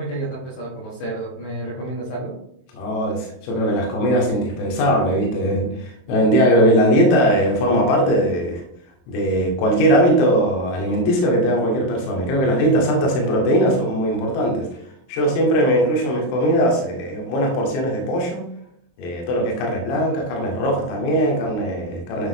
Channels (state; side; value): late; right; 23 ms